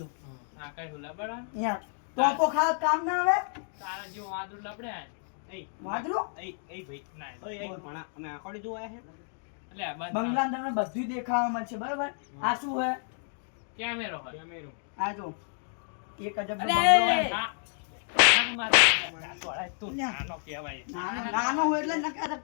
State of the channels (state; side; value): silent; right; 58 dB below the other